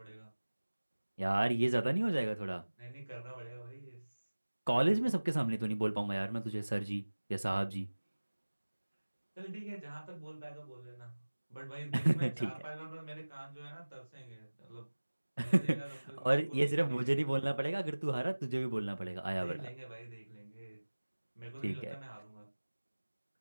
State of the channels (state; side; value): inverted; both; correlation -1.00